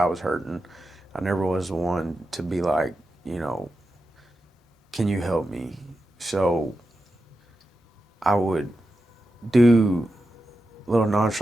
was hurting. I never was the one to be like, you know, can you help me? So I would do little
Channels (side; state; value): both; normal; correlation 0.90